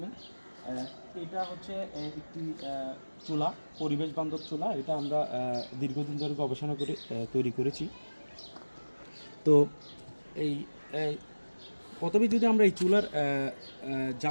এটা হচ্ছে একটি চুলা, পরিবেশ বান্ধব চুলা। এটা আমরা দীর্ঘদিন ধরে গবেষণা করে তৈরি করেছি। তো এই প্রথমে যদি আমরা এই চুলার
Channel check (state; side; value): inverted; both; correlation -1.00